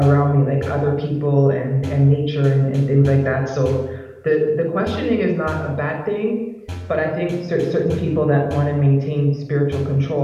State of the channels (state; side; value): identical; both; correlation 1.00